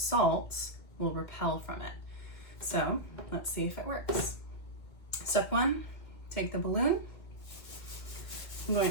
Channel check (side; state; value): right; late; 2.3 ms